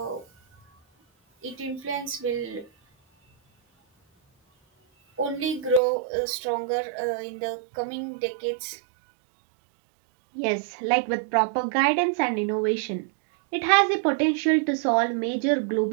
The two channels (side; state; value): left; drops out; at 5.8 s